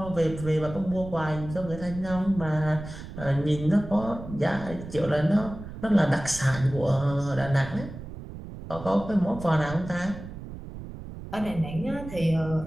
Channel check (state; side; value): noise; right; rumble, 12 dB below the sound